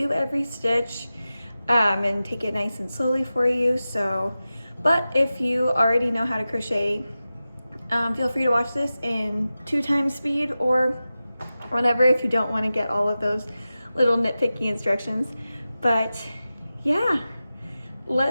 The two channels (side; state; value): both; inverted; correlation -0.94